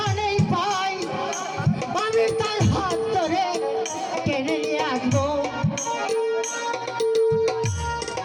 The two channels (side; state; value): both; identical; correlation 1.00